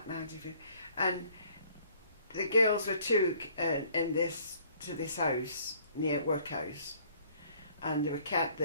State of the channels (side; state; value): both; inverted; correlation -0.58